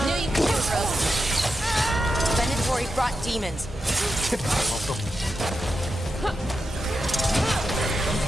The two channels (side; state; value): both; normal; correlation 0.88